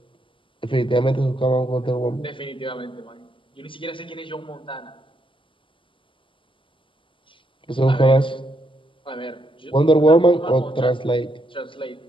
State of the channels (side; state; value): right; late; 0.25 ms